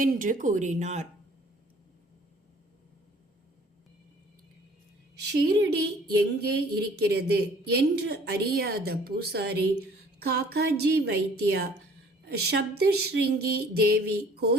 என்று கூறினார். ஷீரடி எங்கே இருக்கிறது என்று அறியாத பூசாரி காக்காஜி வைத்தியா சப்தஸ்ருங்கி தேவி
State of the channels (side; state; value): both; normal; correlation 0.54